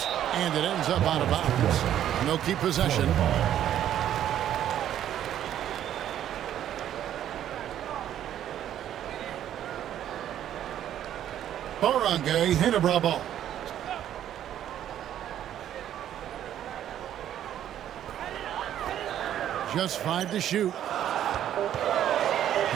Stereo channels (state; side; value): quieter; left; 11.0 dB